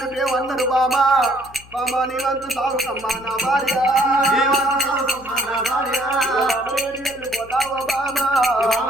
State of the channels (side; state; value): left; noise; hum, 23 dB below the sound